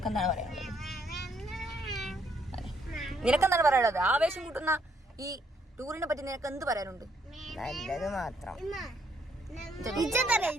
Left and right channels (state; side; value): normal; both; correlation 0.70